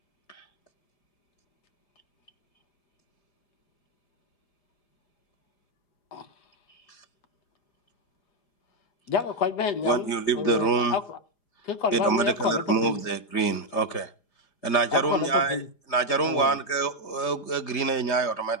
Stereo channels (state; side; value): late; right; 4.9 ms